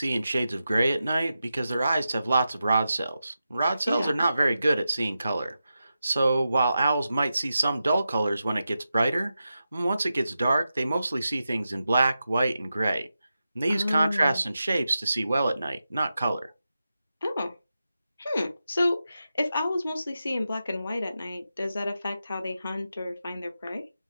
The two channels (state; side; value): inverted; both; correlation -0.90